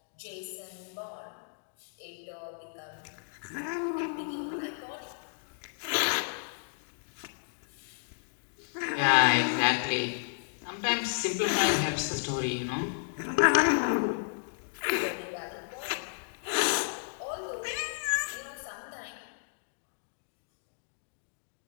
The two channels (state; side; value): silent; right; digital silence